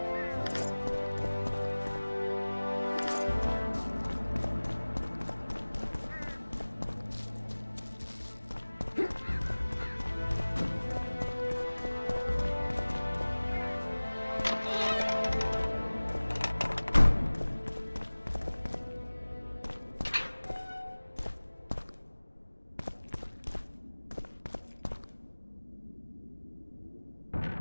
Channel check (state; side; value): inverted; both; correlation -1.00